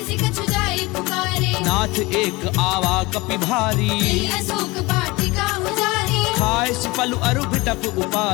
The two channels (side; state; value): right; quieter; 22.8 dB